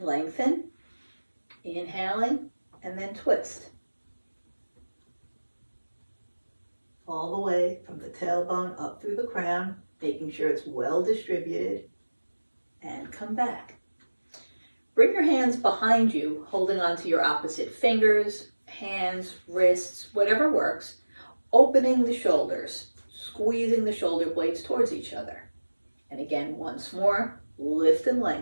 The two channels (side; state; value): both; inverted; correlation -1.00